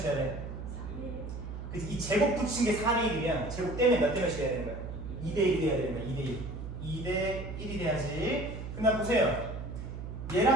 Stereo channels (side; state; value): right; noise; hum, 8 dB below the sound